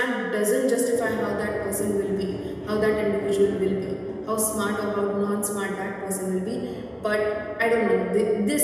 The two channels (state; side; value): identical; both; correlation 1.00